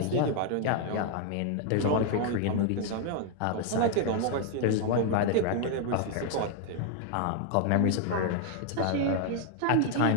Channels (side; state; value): both; different; correlation 0.00